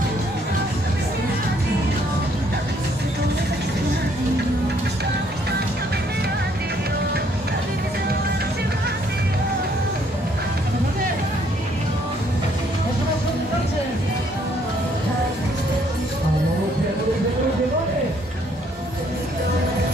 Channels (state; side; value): normal; both; correlation 0.66